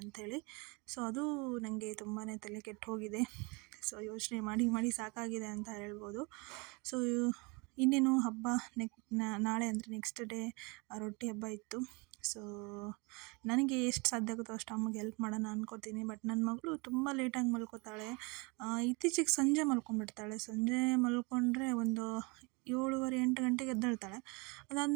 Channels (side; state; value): left; quieter; 28.7 dB